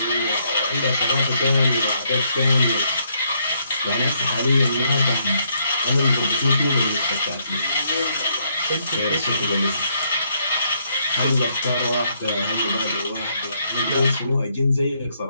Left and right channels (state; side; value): inverted; both; correlation -0.73